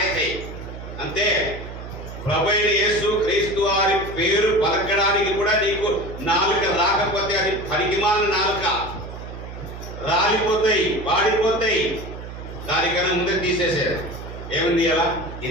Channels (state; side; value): noise; right; hum, 11 dB below the sound